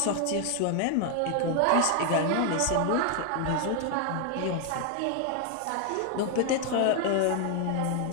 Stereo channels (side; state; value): both; different; correlation 0.00